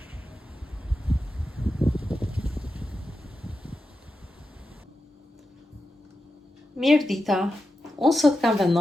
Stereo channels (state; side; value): normal; both; correlation 0.90